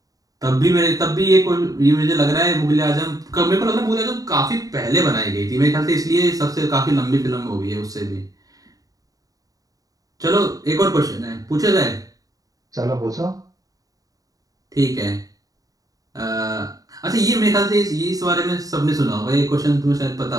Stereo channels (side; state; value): left; late; 0.17 ms